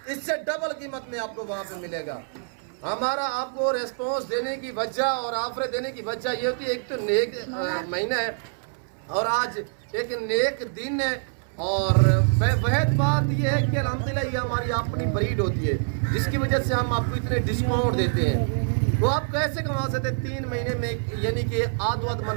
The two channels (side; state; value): left; silent; 61 dB below the other